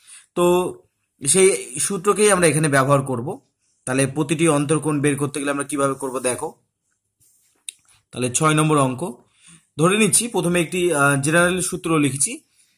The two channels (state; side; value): identical; both; correlation 1.00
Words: তো সেই সূত্রকেই আমরা এখানে ব্যবহার করব। তাহলে প্রতিটি অন্তর্কোণ বের করতে গেলে আমরা কিভাবে করব দেখো। তাহলে 6 নম্বর অঙ্ক ধরে নিচ্ছি, প্রথমে একটি জেনারেল সূত্র লিখছি।